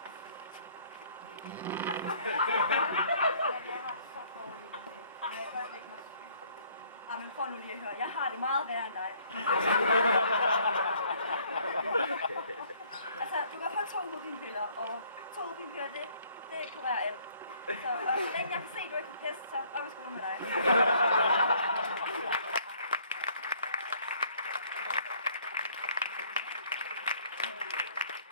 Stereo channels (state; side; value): inverted; both; correlation -0.61